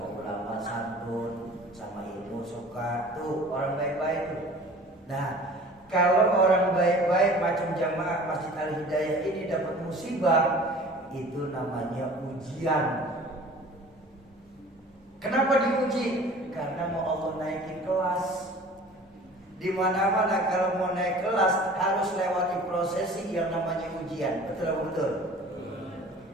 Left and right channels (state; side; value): normal; both; correlation 0.45